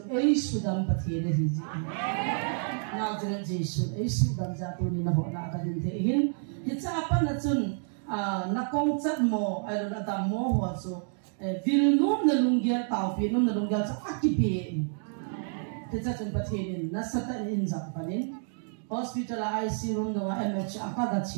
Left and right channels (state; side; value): silent; left; 58 dB below the other